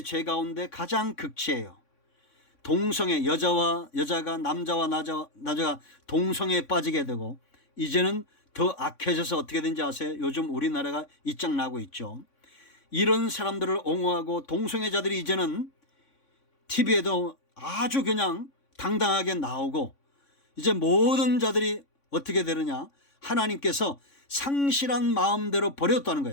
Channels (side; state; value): right; late; 3.6 ms